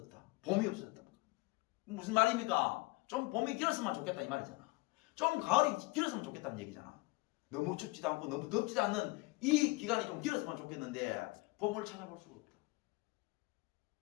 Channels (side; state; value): right; quieter; 23.9 dB